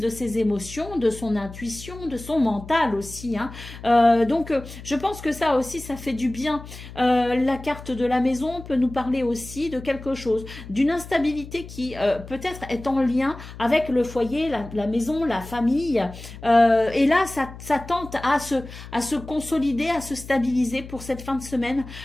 ses émotions, de son intuition, de son mental aussi. Donc, je pense que ça aussi, ça fait du bien. La carte de la maison peut nous parler aussi de quelque chose, d'une instabilité qui peut-être est en lien avec le foyer, la maison, la famille. Et là, ça tente à se consolider, à se stabiliser pour cette fin de semaine.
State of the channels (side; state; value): left; noise; hum, 14 dB below the sound